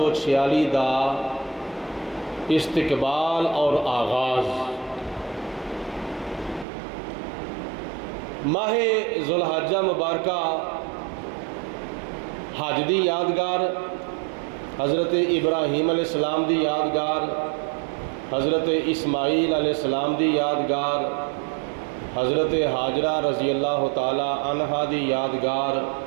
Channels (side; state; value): left; drops out; at 6.7 s